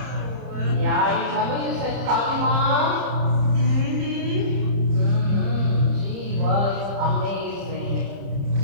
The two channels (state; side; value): late; left; 30 ms